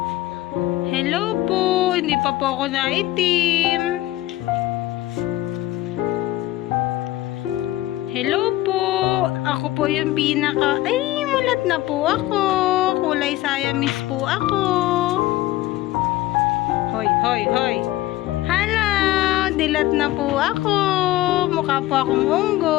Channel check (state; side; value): quieter; right; 16.2 dB